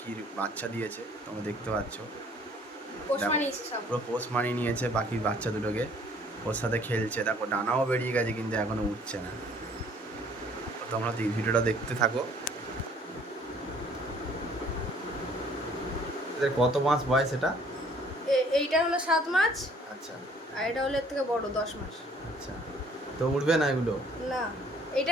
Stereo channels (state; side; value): normal; both; correlation 0.57